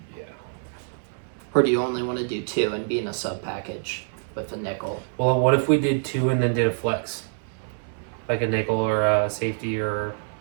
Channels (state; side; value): silent; left; 61 dB below the other